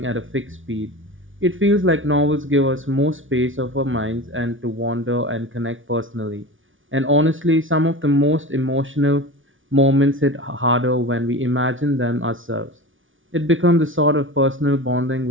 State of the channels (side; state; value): left; late; 0.57 ms